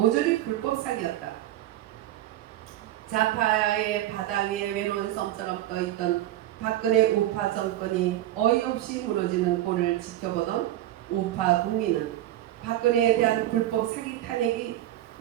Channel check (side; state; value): left; quieter; 13.8 dB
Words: 불법 사기였다. 좌파의 바다 위에 외로운 섬처럼 떠있던 박근혜 우파 정권이 어이없이 무너지는 꼴을 지켜보던 우파 국민은 박근혜에 대한 불법 사기 탄핵이